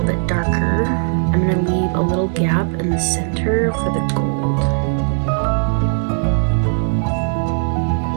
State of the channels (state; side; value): silent; left; digital silence